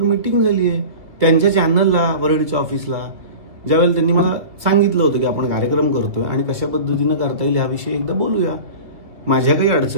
मीटिंग झाली आहे त्यांच्या चॅनलला, वरळीच्या ऑफिसला. ज्यावेळेला त्यांनी मला सांगितलं होतं की आपण कार्यक्रम करतोय आणि कशा पद्धतीनं करता येईल याविषयी एकदा बोलूया. माझ्या काही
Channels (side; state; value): left; late; 2.4 ms